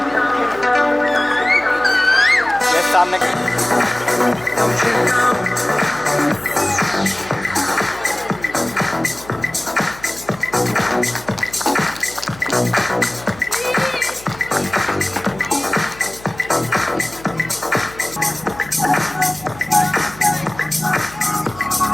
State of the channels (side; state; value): left; noise; hum, 20 dB below the sound